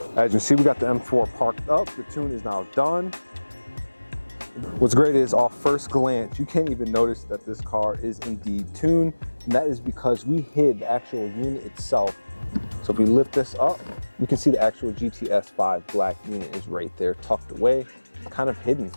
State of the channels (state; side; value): inverted; both; correlation -1.00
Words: As you see, we got the M4 parked up. The tune is now done. What's great is off first glance, you can't even notice that this car is indeed tuned. And that is because we hid the actual unit itself. So if we lift this up, you can see the actual GTS5 black unit is right there tucked away. It's kind of hidden,